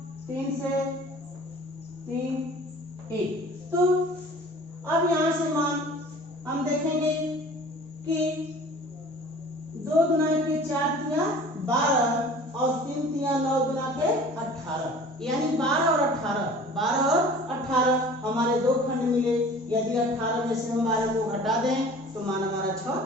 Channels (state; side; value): normal; both; correlation 0.45